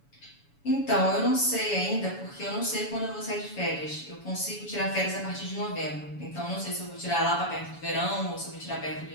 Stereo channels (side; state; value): right; late; 7.0 ms